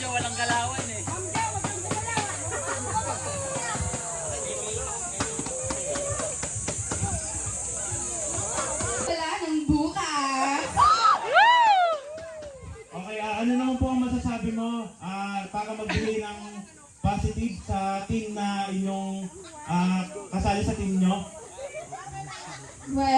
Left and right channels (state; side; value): identical; both; correlation 1.00